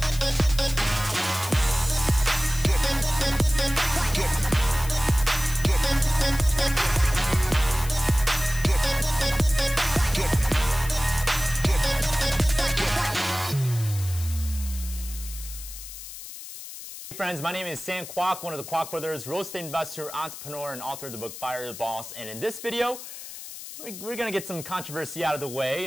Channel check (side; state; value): left; noise; hiss, 12 dB below the sound